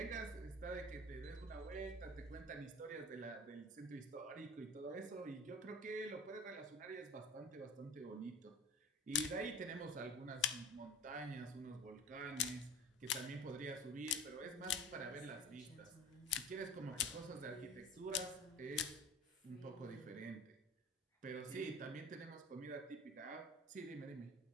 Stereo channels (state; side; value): normal; both; correlation 0.39